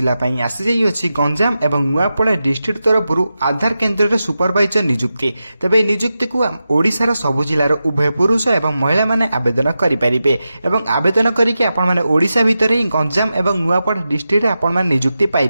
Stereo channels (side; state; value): both; inverted; correlation -0.91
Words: आसी जाइए गंजाम एवं नुआपड़ा डिस्ट्रिक्ट तरफ आधार केन्द्र सुपरवाइजर नियुक्ति तेबे नियुक्ति को ओडिशार सबु जिलार उभय पुरुष एवं महिला माने आवेदन करें एवं आवेदन करके आपण माने ओडिशा भितर ही गंजाम एवं नुआपड़ा डिस्ट्रिक्ट आपण माने नियुक्ति पाई